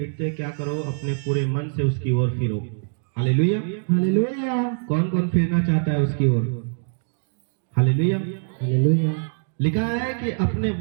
क्या करो? अपने पूरे मन से उसकी ओर फिरो। हालेलुया। हालेलुया। कौन कौन फिरना चाहता है उसकी ओर? हालेलुया। हालेलुया। लिखा है कि अपने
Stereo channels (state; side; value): silent; left; digital silence